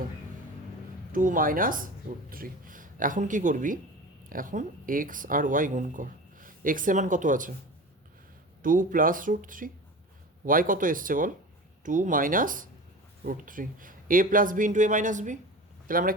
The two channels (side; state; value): both; normal; correlation 0.33